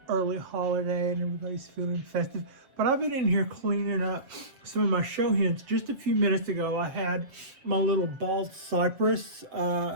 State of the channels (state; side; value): late; left; 7.6 ms